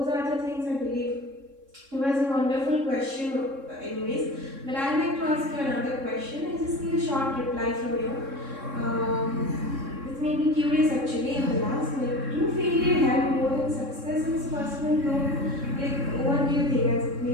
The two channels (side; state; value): left; late; 3.6 ms